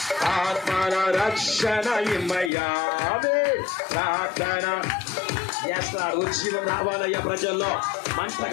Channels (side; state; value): right; drops out; at 2.5 s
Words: ఆత్మల రక్షణ ఇమ్మయ్యా ప్రార్థన చేస్తారు ఉజ్జీవం రావాలయ్యా ప్రజల్లో మంట